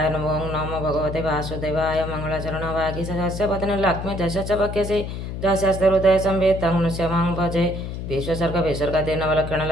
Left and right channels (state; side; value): noise; left; hum, 6 dB below the sound